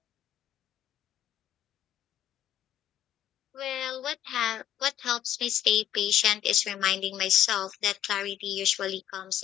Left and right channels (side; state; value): right; quieter; 11.3 dB